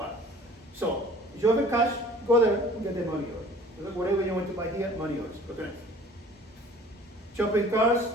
So if you have a cash, go there and get the money order. Whatever you want to buy here, money orders. Okay. Shopping carts.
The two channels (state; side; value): normal; both; correlation 0.49